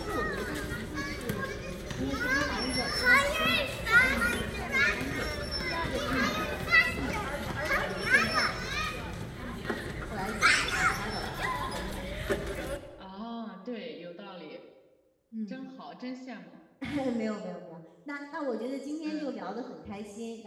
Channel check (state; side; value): identical; both; correlation 1.00